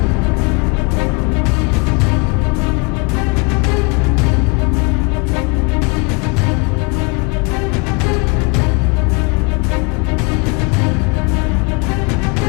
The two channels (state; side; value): quieter; right; 30.6 dB